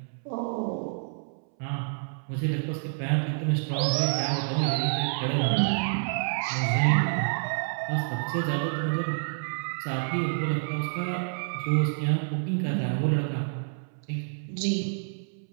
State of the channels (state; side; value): silent; left; 59 dB below the other